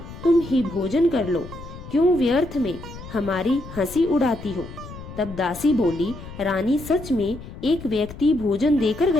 तुम ही भोजन कर लो, क्यों व्यर्थ में हमारी हंसी उड़ाती हो। तब दासी बोली, रानी सच में एक व्यक्ति भोजन देकर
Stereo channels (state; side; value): noise; left; rumble, 13 dB below the sound